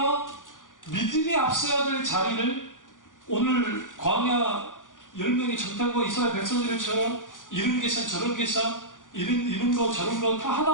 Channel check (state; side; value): late; right; 0.88 ms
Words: 믿음이 앞서야 될 자리를, 오늘 광야 10명의 정탐과 이스라엘 백성들처럼 이런 계산 저런 계산, 이런 거 저런 거 다